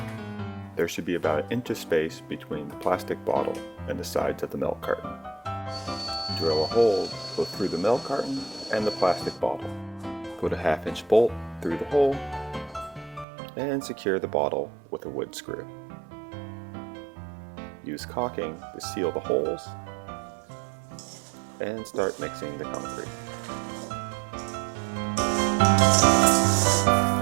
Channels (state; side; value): drops out; left; at 13.2 s